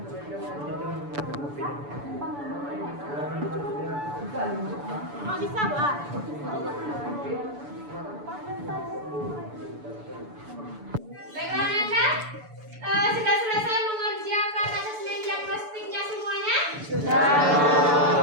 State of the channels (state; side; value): late; left; 6.9 ms